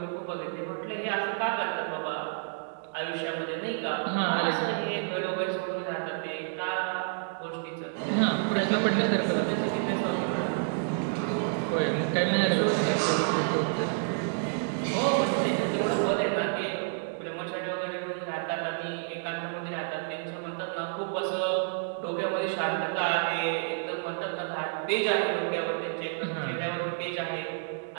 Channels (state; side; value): silent; left; digital silence